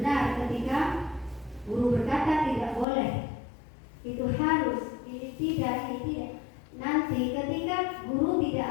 ketika guru berkata tidak boleh, itu harus, ini tidak. Nanti ketika guru tidak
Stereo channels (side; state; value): right; drops out; at 2.9 s